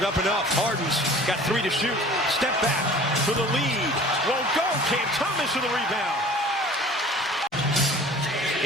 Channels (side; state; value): both; normal; correlation 0.46